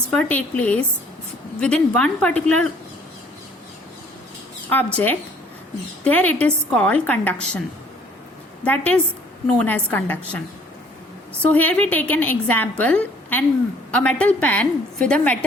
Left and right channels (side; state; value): both; normal; correlation 0.58